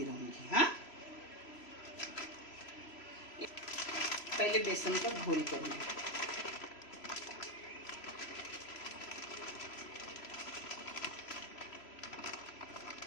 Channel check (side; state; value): right; late; 3.0 ms